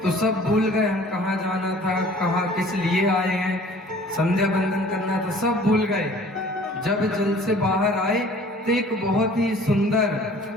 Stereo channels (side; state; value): both; normal; correlation 0.50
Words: तो सब भूल गए हम कहाँ जाना था, कहाँ किस लिए आए हैं, संध्या बंदन करना था, सब भूल गए। जब जल से बाहर आए तो एक बहुत ही